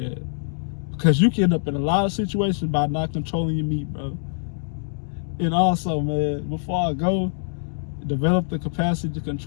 because you can end up in a lot of situations by not controlling your meat, bro. And also, man, before I go, develop the capacity to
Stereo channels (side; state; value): right; silent; digital silence